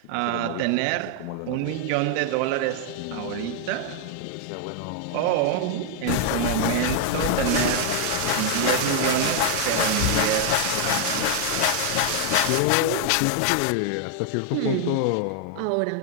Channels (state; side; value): different; both; correlation 0.00